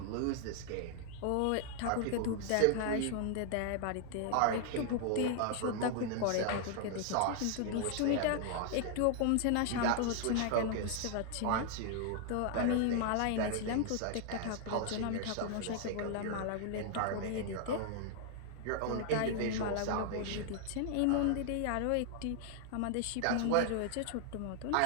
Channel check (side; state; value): both; different; correlation 0.00